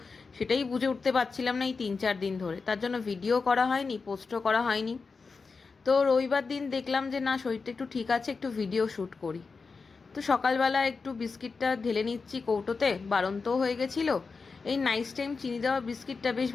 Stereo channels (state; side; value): quieter; right; 4.6 dB